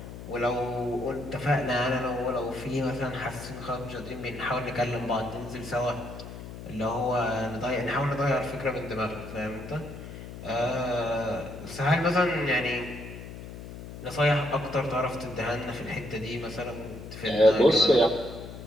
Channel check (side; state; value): left; noise; hum, 12 dB below the sound